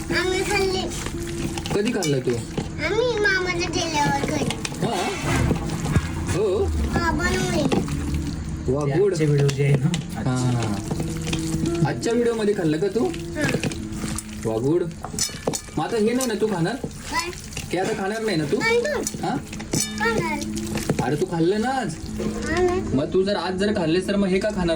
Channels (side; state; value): both; identical; correlation 1.00